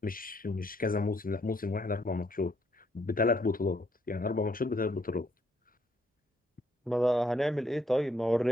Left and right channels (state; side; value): normal; both; correlation 0.71